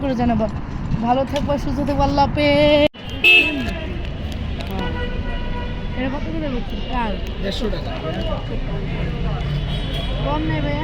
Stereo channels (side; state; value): both; identical; correlation 1.00